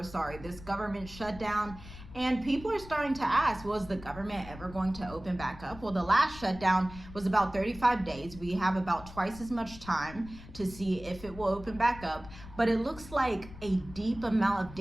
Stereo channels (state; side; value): noise; left; rumble, 16 dB below the sound